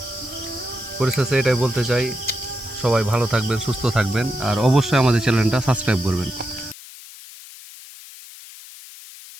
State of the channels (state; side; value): noise; left; hiss, 17 dB below the sound